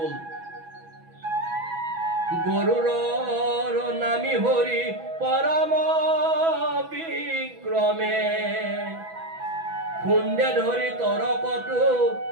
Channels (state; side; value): late; left; 6.1 ms